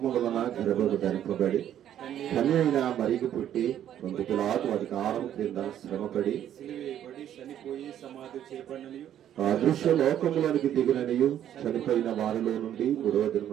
వలన గర్భము ధరింపబడి కన్య అయిన మరికి పుట్టి 2 కిలోల అధికారం క్రింద శ్రమపడి చనిపోయి సమాధి చేయబడిననియు అదృశ్య లోకములోనికి దిగిననియు చనిపోయిన వారిలో నుండి 3వ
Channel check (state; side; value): quieter; left; 10.7 dB